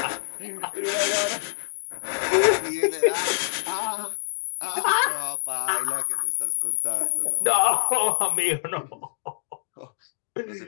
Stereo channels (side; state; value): right; silent; digital silence